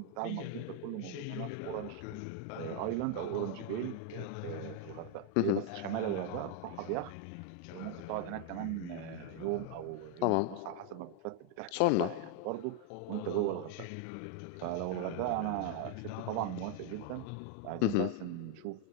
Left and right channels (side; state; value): both; different; correlation 0.01